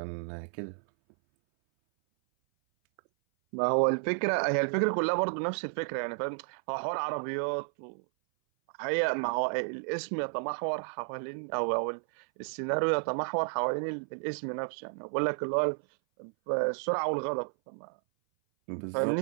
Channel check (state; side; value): silent; left; 57 dB below the other